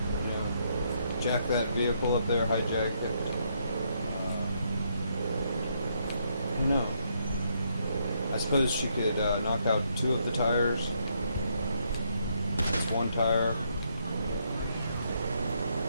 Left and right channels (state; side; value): inverted; both; correlation -0.74